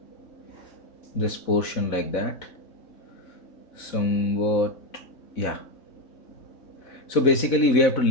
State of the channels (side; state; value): right; late; 4.1 ms